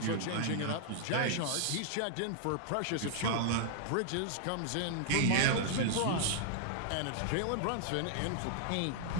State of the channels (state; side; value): different; both; correlation -0.01